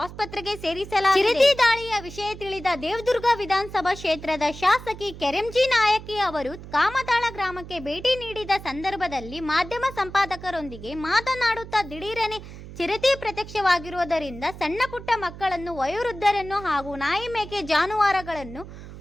ಸೇರಿಸಲಾಗಿದೆ. ಚಿರತೆ ದಾಳಿಯ ವಿಷಯ ತಿಳಿದ ದೇವದುರ್ಗ ವಿಧಾನಸಭಾ ಕ್ಷೇತ್ರದ ಶಾಸಕಿ ಕೆರೆಂಜಿ ನಾಯಕಿ ಅವರು ಕಾಮತಾಳ ಗ್ರಾಮಕ್ಕೆ ಭೇಟಿ ನೀಡಿದ ಸಂದರ್ಭದಲ್ಲಿ ಮಾಧ್ಯಮ ಸಂಪಾದಕರೊಂದಿಗೆ ಮಾತನಾಡುತ್ತಾ ದಿಢೀರನೆ ಚಿರತೆ ಪ್ರತ್ಯಕ್ಷವಾಗಿರುವುದರಿಂದ ಸಣ್ಣ ಪುಟ್ಟ ಮಕ್ಕಳನ್ನು, ವಯೋವೃದ್ಧರನ್ನು ಹಾಗೂ ನಾಯಿ ಮೇಕೆ ಜಾನುವಾರುಗಳನ್ನು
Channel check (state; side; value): noise; right; hum, 14 dB below the sound